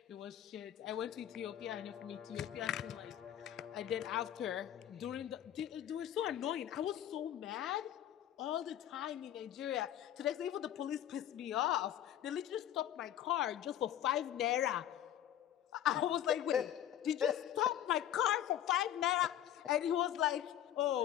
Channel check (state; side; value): quieter; right; 11.3 dB